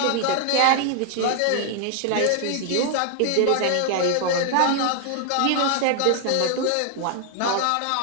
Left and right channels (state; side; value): different; both; correlation 0.00